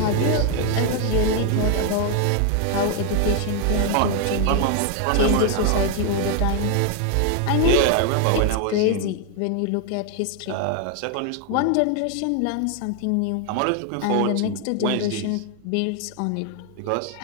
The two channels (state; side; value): different; both; correlation 0.01